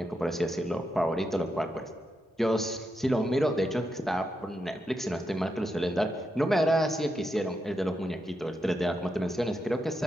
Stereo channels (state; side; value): normal; both; correlation 0.84